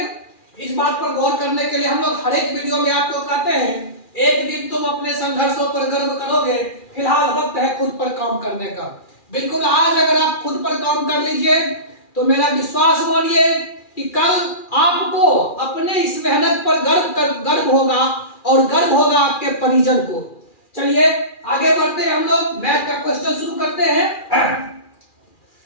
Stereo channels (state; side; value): late; right; 2.4 ms